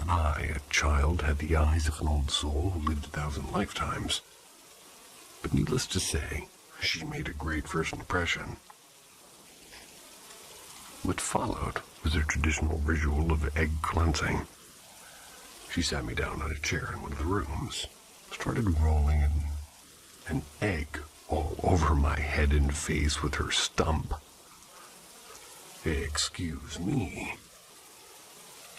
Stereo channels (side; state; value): both; identical; correlation 1.00